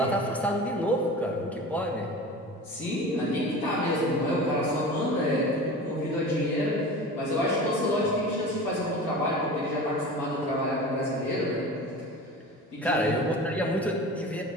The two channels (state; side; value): normal; both; correlation 0.35